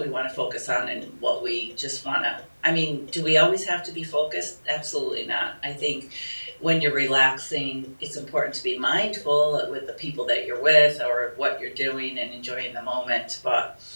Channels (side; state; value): both; inverted; correlation -1.00